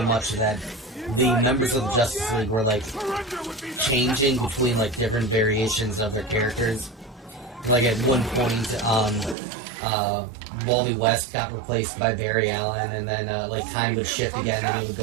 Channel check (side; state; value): left; drops out; at 9.3 s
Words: much that the members of the Justice League were like changing between like different variations of their characters. Like at one point, Wally West got replaced by Barry Allen, and then like time would shift again, and it would